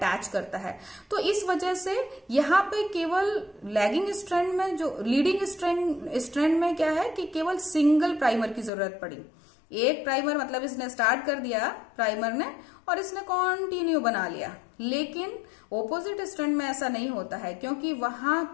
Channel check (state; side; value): drops out; right; at 8.7 s